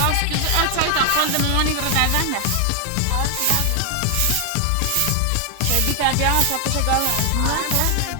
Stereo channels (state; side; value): different; both; correlation 0.00